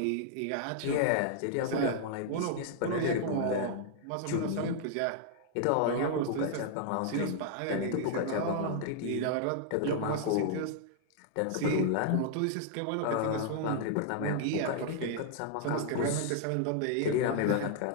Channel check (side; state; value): both; different; correlation -0.01